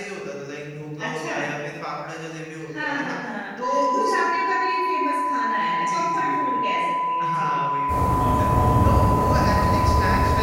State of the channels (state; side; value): identical; both; correlation 1.00